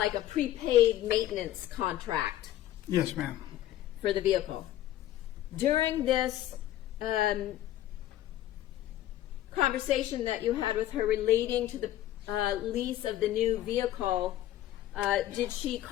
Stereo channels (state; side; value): quieter; right; 13.5 dB